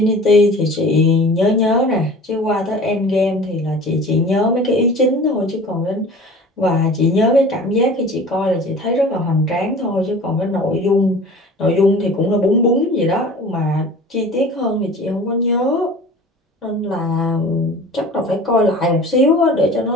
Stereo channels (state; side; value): normal; both; correlation 0.41